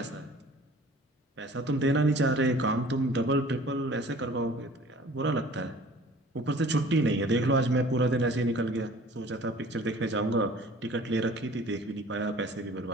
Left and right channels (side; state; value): both; normal; correlation 0.48